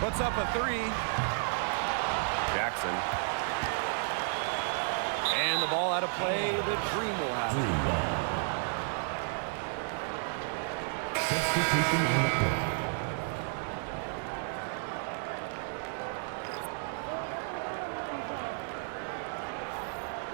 up a three. Jackson. And the ball out of play. The Dream will have it.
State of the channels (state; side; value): silent; left; 56 dB below the other